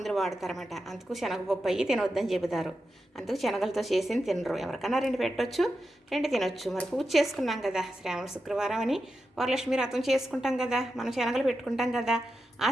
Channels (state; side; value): normal; both; correlation 0.89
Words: వాడతారన్నమాట. అందుకు శనగపప్పు అయ్యి తినొద్దని చెబుతారు. అందుకు శనగలతో చేసి తినరు. ఎవరికన్నా రెండు పెట్టొచ్చు, రెండు తినొచ్చు. మరి పూజ చేసుకున్నాం కదా, శ్రావణ శుక్రవారం అని వరలక్ష్మి వ్రతం చేసుకుంటాం కదా, మనం శనగలు పెట్టుకుంటాం కదా. ఆ